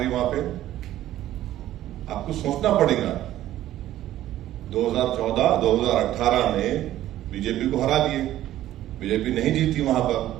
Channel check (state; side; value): quieter; left; 13.5 dB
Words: वहां पे? आपको सोचना पड़ेगा। 2014, 2018 में बीजेपी को हरा दिए, बीजेपी नहीं जीती वहां पर।